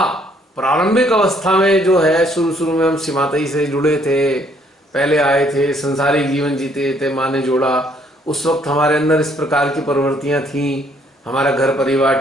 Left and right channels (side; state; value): both; normal; correlation 0.65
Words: प्रारंभिक अवस्था में जो है, शुरू में हम सीमातई से जुड़े थे, पहले आए थे, संसारिक जीवन जीते थे, माँ ने जोड़ा, उस वक्त हमारे अंदर इस प्रकार की प्रवृत्तियां थी, हमारा घर परिवार